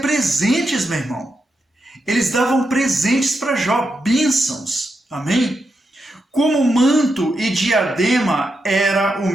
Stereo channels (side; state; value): both; normal; correlation 0.85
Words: meu irmão. Eles davam presentes para Jó, bênçãos. Amém? Como manto e diadema era o